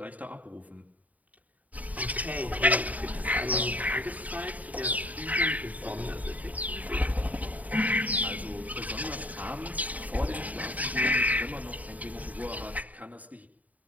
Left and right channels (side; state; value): left; late; 0.073 ms